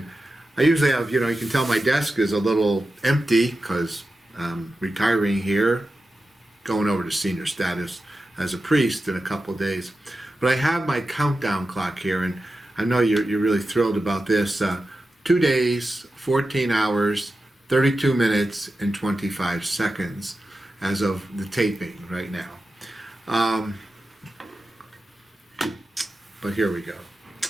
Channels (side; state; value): both; normal; correlation 0.92